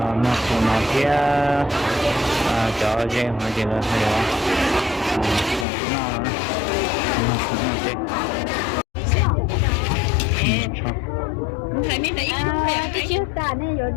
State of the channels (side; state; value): right; drops out; at 5.7 s